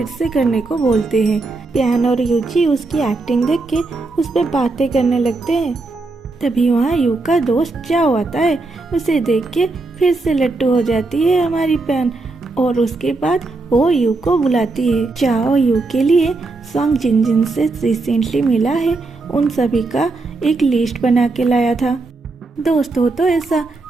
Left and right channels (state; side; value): quieter; left; 3.4 dB